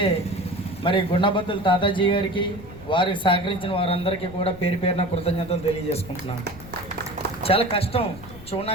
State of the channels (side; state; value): left; noise; rumble, 17 dB below the sound